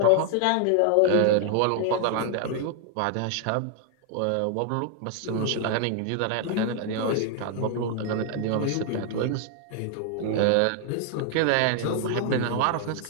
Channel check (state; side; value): different; both; correlation 0.00